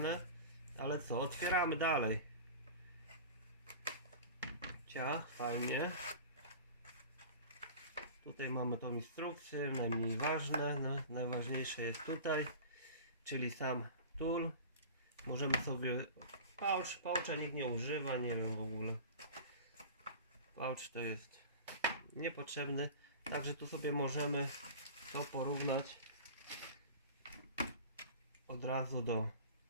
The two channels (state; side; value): inverted; both; correlation -0.36